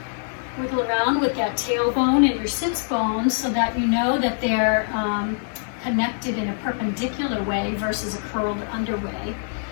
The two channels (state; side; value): silent; right; digital silence